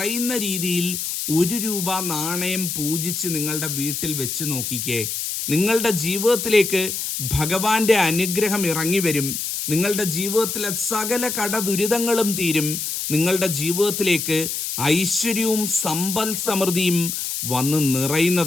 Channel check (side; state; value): left; noise; hiss, 3 dB below the sound